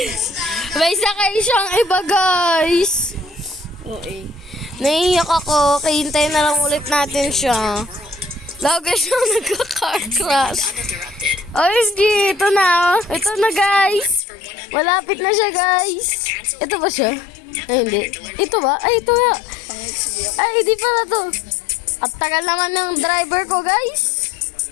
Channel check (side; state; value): right; drops out; at 14.2 s